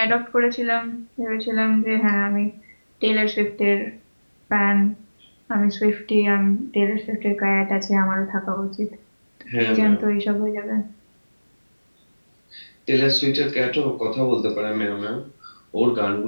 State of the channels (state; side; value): inverted; both; correlation -1.00